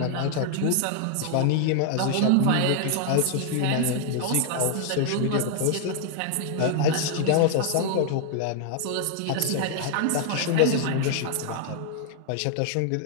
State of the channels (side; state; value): both; different; correlation 0.00